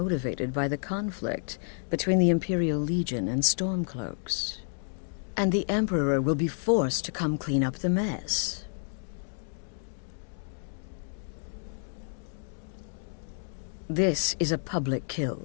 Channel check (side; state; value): right; silent; digital silence